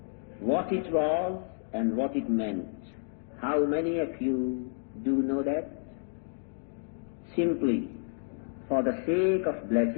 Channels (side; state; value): right; silent; digital silence